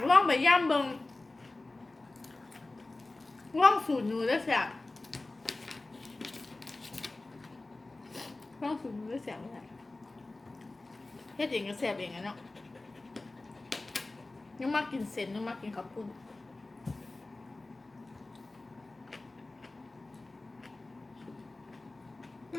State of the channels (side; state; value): right; quieter; 3.1 dB